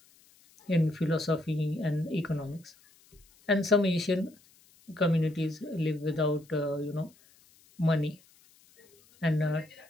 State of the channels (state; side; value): noise; left; hiss, 29 dB below the sound